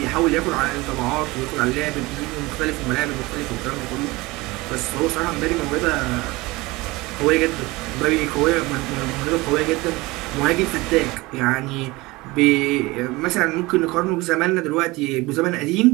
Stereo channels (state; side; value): quieter; left; 21.9 dB